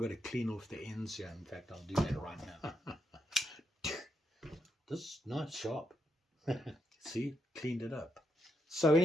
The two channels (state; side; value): normal; both; correlation 0.80